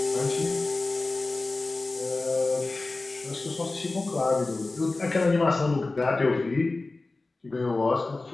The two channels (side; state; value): right; quieter; 3.3 dB